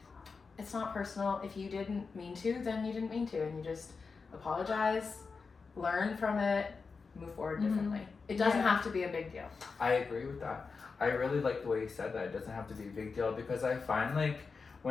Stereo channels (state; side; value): quieter; right; 4.8 dB